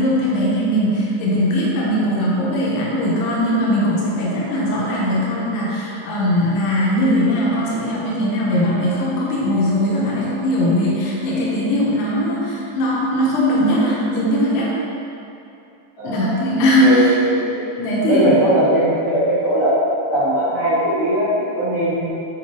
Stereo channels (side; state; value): right; late; 19 ms